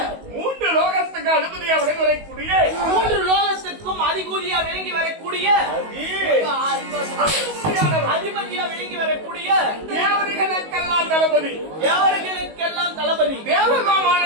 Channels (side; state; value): left; late; 19 ms